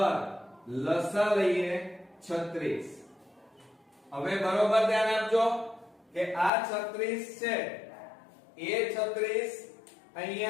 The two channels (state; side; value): drops out; right; at 6.5 s